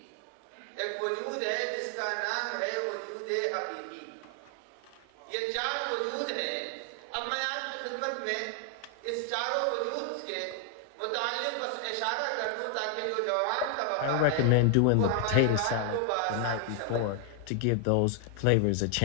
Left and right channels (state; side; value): different; both; correlation 0.00